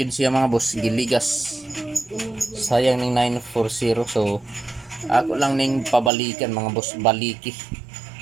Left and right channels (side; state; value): left; drops out; at 6.1 s